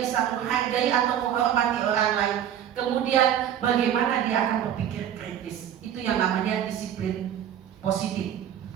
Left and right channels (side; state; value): left; quieter; 10.1 dB